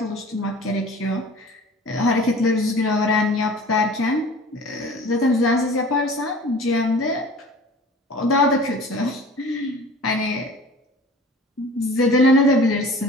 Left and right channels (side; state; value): both; normal; correlation 0.43